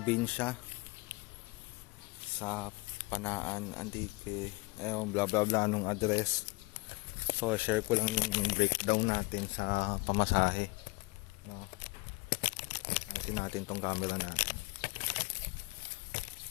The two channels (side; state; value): right; quieter; 25.8 dB